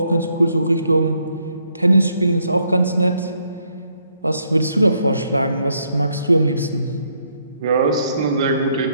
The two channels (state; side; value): inverted; both; correlation -0.72